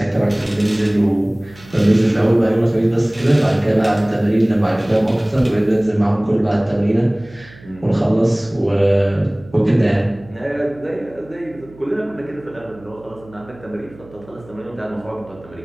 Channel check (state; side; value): noise; right; hum, 23 dB below the sound